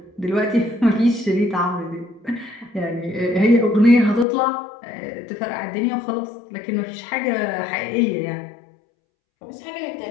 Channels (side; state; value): right; drops out; at 4.2 s